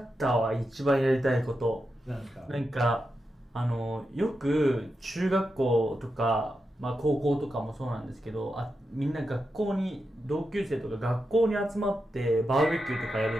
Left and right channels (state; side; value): normal; both; correlation 0.88